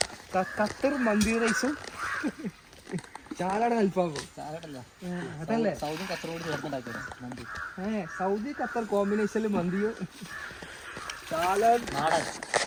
ഖത്തർ മന്തി റൈസും ചാലാടൻ അൽഫാമും. അതല്ലേ സൗദി ഖത്തർ കോമ്പിനേഷനിൽ മന്തിയും ചാലാടൻ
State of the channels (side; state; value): both; identical; correlation 1.00